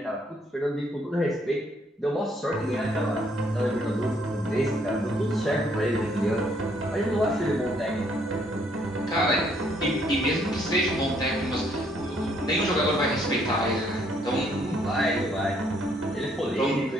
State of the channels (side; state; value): both; normal; correlation 0.68